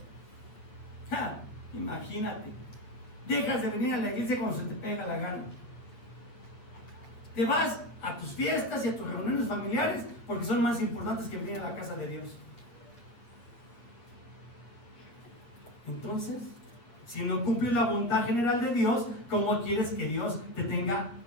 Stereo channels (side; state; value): right; late; 8.3 ms